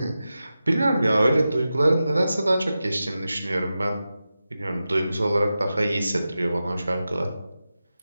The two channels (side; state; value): both; inverted; correlation -0.92